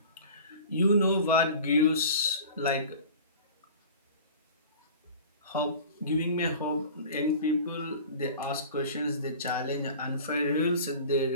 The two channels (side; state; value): both; inverted; correlation -0.40